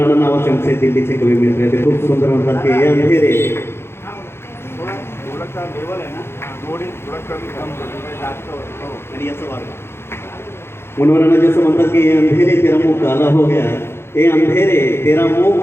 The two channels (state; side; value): late; right; 0.12 ms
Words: नावाचे आमचे दिल्लीचे कवी मित्र ते खूप सुंदर म्हणतात की हे अंधेरे आणि याचं वार्ग मनोराणा जैसे म्हणतात कि ये अंधेरे तेरा मुंह काला हो गया, ये अंधेरे तेरा मुंह